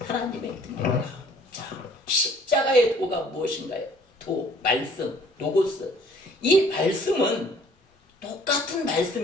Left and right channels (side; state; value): both; normal; correlation 0.56